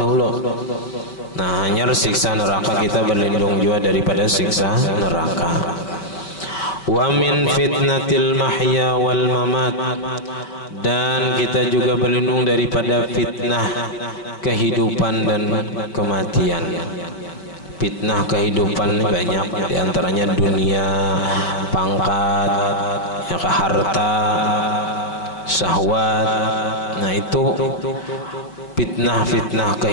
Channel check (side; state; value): right; late; 5.1 ms